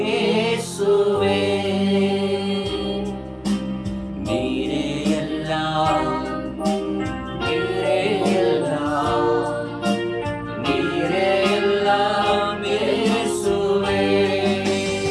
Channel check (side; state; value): both; identical; correlation 1.00